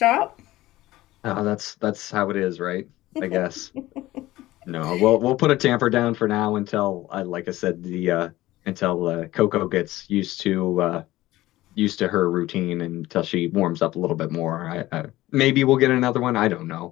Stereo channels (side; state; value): right; quieter; 16.8 dB